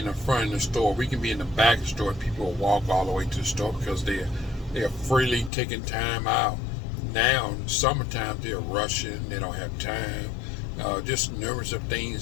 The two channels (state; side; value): drops out; right; at 5.5 s